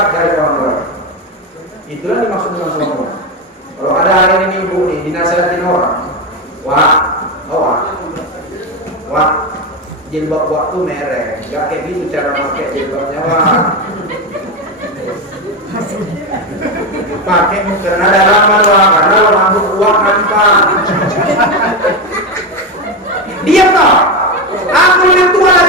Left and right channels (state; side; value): normal; both; correlation 0.13